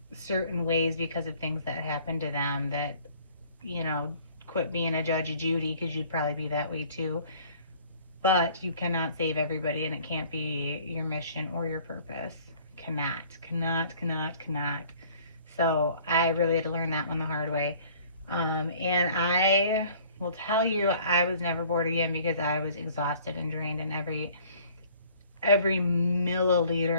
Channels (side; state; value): both; inverted; correlation -0.54